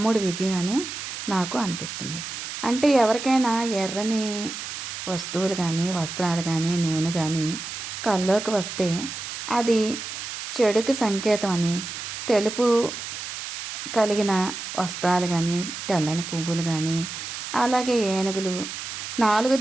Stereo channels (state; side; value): noise; right; hiss, 7 dB below the sound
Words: విజయం అని నాకు అనిపిస్తుంది. అంటే ఎవరికైనా ఎర్రని వస్తువులు కానీ వస్త్రాలు కానీ నూనె కానీ కల్లోకి వస్తే అది చెడుకు సంకేతం అని, తెలుపు కలిగిన వస్త్రాలు కానీ తెల్లని పువ్వులు కానీ అలాగే ఏనుగులు 4